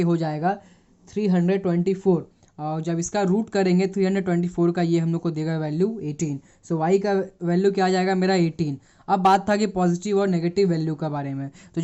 हो जाएगा 324 और जब इसका रूट करेंगे 324 का ये हम लोग को देगा वैल्यू 18। सो y का वैल्यू क्या आ जाएगा मेरा 18। अब बात था कि पॉजिटिव और नेगेटिव वैल्यू का बारे में, तो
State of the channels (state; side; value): identical; both; correlation 1.00